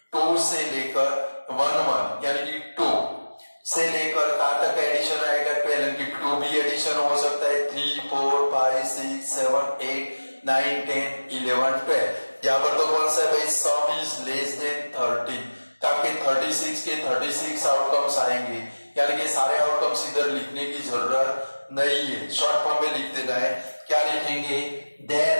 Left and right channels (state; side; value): inverted; both; correlation -1.00